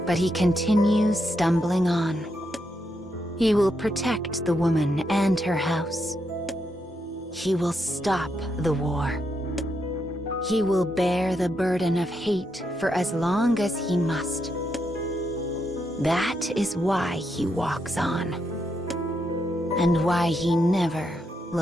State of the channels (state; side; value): normal; both; correlation 0.81